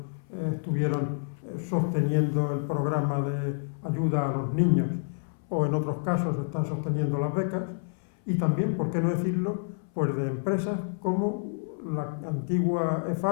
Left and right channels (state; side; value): silent; right; 59 dB below the other